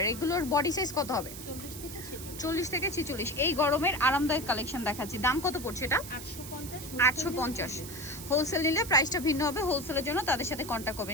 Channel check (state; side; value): noise; right; hiss, 12 dB below the sound